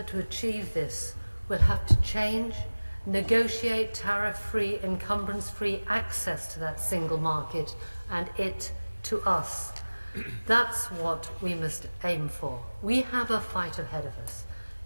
to achieve this, we'll have to change, negotiate tariff-free, encumbrance-free access to that single market and it to us. That's what we must aim for. We have a fight ahead of us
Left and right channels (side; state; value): both; inverted; correlation -1.00